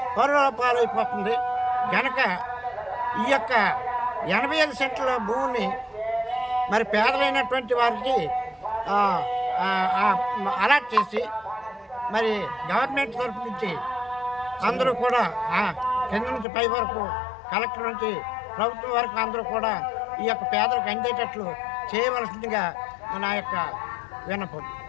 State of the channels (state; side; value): drops out; right; at 16.4 s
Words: పరుల పాలైపోతుంది కనుక ఈ యొక్క 85 సెంట్ల భూమిని మరి పేదలైనటువంటి వారికి అలాట్ చేసి మరి గవర్నమెంట్ తరఫు నుంచి అందరూ కూడా కింద నుంచి పై వరకు కలెక్టర్ నుంచి ప్రభుత్వం వరకు అందరూ కూడా ఈ యొక్క పేదలకు అందేటట్లు చేయవలసిందిగా నా యొక్క విన్నపం.